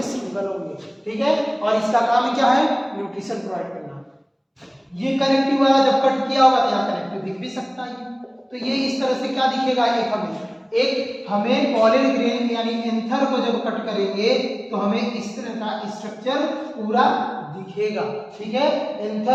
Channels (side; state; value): both; identical; correlation 1.00